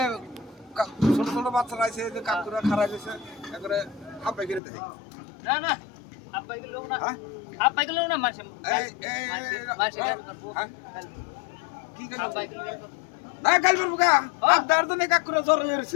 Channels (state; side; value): drops out; right; at 4.6 s